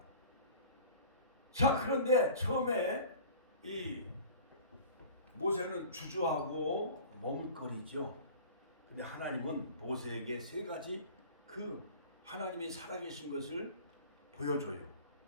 자, 그런데 처음에 이 모세는 주저하고 머뭇거리죠. 근데 하나님은 모세에게 세 가지 그 하나님이 살아계신 것을 보여줘요.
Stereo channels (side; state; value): both; inverted; correlation -0.42